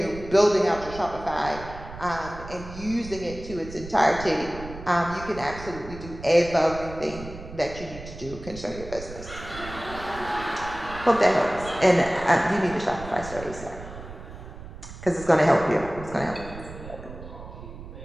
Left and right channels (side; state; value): right; noise; rumble, 13 dB below the sound